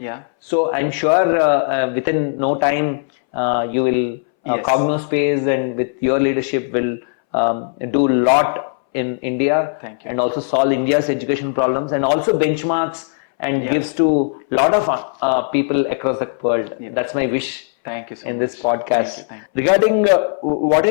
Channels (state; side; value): silent; right; 65 dB below the other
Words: So I'm sure within no time you will Yes. CognoSpace, and with your leadership will do a lot in India. Thank you. And also solve India's education problems, and also benchmarks and Yeah. gives to a lot of people across the world. Yeah. That's my wish. Thank you so in much. this podcast. Thank you. Regarding what